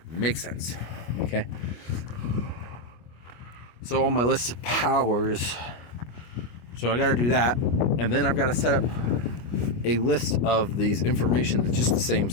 Makes sense. Okay. So on my list of powers, so I got to do that, and then I've got to set up a list of these information that's just the same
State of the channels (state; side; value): late; right; 25 ms